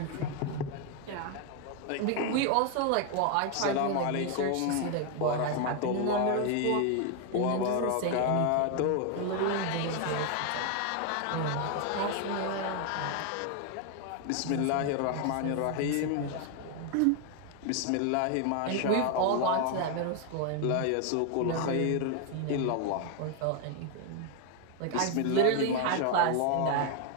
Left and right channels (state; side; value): different; both; correlation 0.01